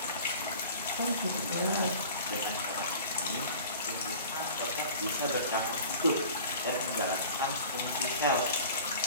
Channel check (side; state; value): both; inverted; correlation -0.42